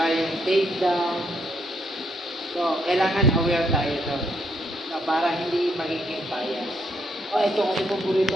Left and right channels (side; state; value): both; normal; correlation 0.74